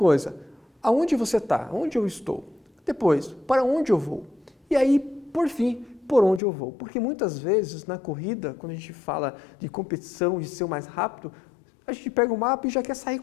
aonde você está? Onde eu estou? Depois, para onde eu vou? E aí, por fim, por onde eu vou? Porque muitas vezes na corrida, quando a gente fala de competição, de ser o mais rápido, a gente pega o mapa e já quer sair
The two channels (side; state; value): right; drops out; at 6.4 s